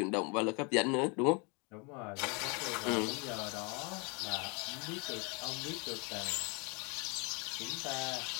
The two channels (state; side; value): quieter; right; 32.2 dB